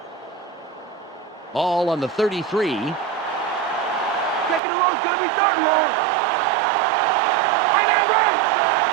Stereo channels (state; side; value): drops out; left; at 4.6 s